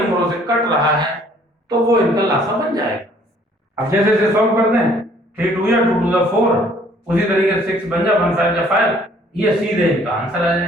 से कट रहा है, तो वो इनका लासा बन जाएगा। अब जैसे जैसे सॉल्व करते हैं, 3 2 या 2 2 4, उसी तरीके से 6 बन जा, 1 5 जा 5, ये सीधे इनका आंसर आ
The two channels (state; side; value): normal; both; correlation 0.59